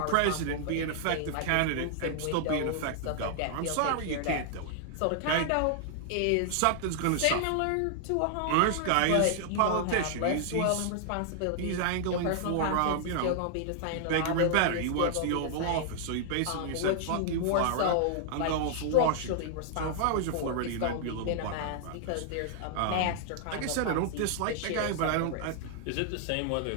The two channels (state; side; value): different; both; correlation -0.01